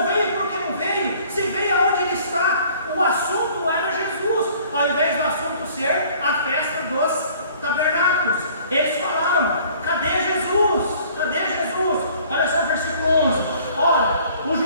veio, por que não veio? Se veio, aonde ele está? O assunto era Jesus, ao invés do assunto ser a festa dos tabernáculos. Eles falaram: cadê Jesus? Cadê Jesus? Olha só o versículo 11. Ora, os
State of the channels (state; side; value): inverted; both; correlation -0.54